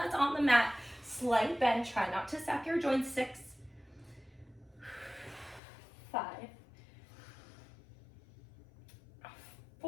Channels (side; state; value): right; drops out; at 5.6 s